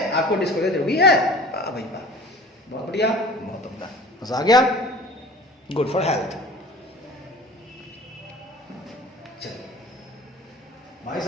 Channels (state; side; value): normal; both; correlation 0.43